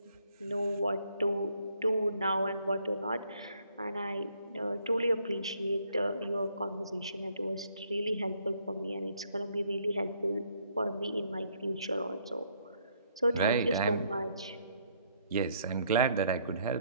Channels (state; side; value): inverted; both; correlation -0.67